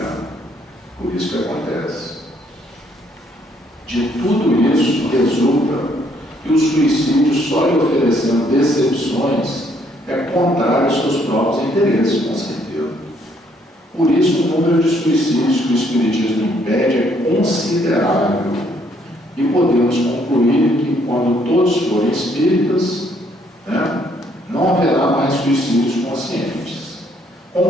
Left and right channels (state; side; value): normal; both; correlation 0.68